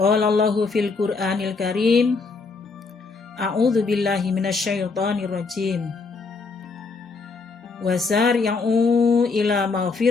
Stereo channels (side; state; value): right; quieter; 4.3 dB